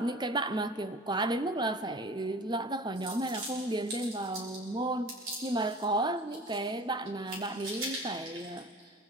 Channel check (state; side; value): normal; both; correlation 0.41